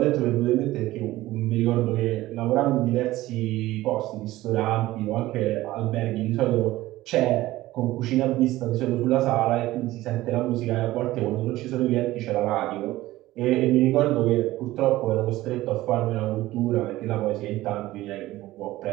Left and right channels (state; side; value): quieter; left; 16.8 dB